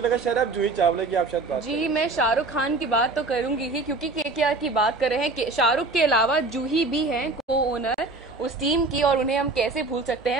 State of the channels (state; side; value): quieter; left; 3.4 dB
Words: लगा शायद आप जूही चावला की आप शायद बात जी, मैं शाहरुख खान की बात तो करूंगी ही क्योंकि केकेआर की बात कर रहे हैं। शाहरुख के अलावा जूही भी हैं को ओनर उस टीम की, और उन्हें हम कैसे भूल सकते